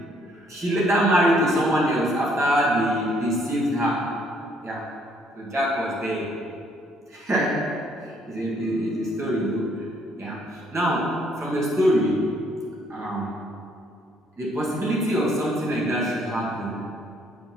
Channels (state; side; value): normal; both; correlation 0.66